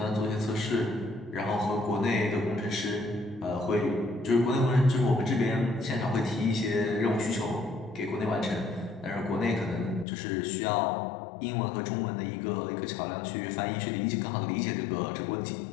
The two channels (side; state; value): right; drops out; at 10.1 s